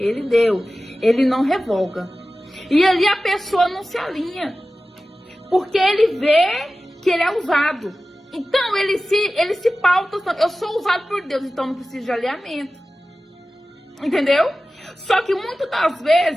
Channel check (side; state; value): both; normal; correlation 0.95